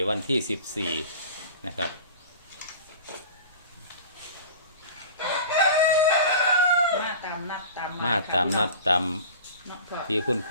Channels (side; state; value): both; inverted; correlation -0.39